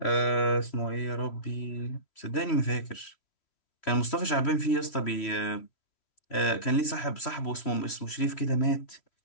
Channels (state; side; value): late; right; 3.1 ms